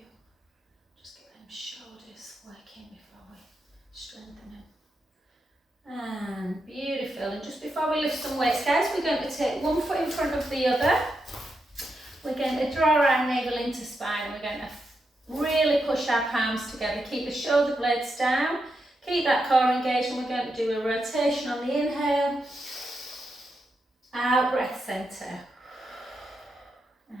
Just get them shoulders working before we strengthen them. And beautiful. And just before we lift some weights, guys, we're going to take one foot in front of the other. We're going to draw our navel into spine. We're going to really push our palms together. Keep the shoulder blades down. Keep that core engaged, and we're going to do a rotation on the inhale. Out, breath centre.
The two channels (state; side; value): normal; both; correlation 0.85